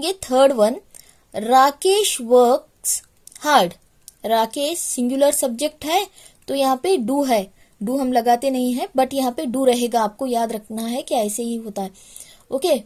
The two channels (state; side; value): identical; both; correlation 1.00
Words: third one, Rakesh works hard. Rakesh singular subject है, तो यहाँ पे डू है, डू हम लगाते नहीं है, बट यहाँ पे डू रहेगा, आपको याद रखना है कि ऐसे ही होता है। ओके,